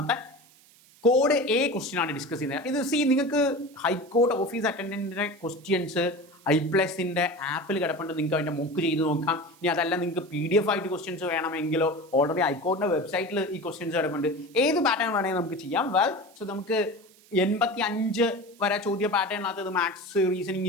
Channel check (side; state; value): right; noise; hiss, 27 dB below the sound